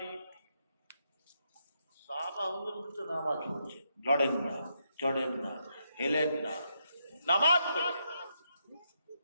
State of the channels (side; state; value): both; inverted; correlation -0.80